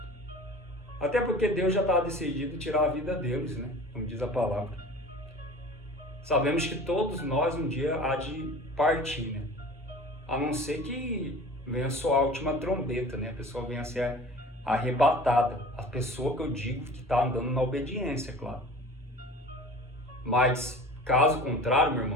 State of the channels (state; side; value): normal; both; correlation 0.41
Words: Até porque Deus já estava decidido tirar a vida deles, né? Como diz a palavra. Sabemos que todos nós um dia há de partir, né? A não ser que venha soar a última trombeta, né? A pessoa venha a ser arrebatada. A pessoa que eu digo que está andando na obediência, claro. Mas, caso contrário, meu